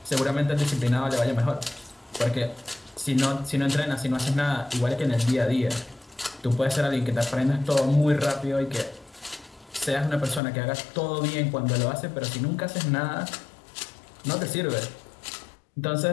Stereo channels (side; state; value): right; drops out; at 10.4 s